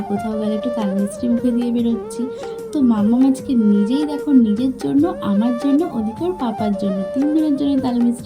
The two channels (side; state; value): both; identical; correlation 1.00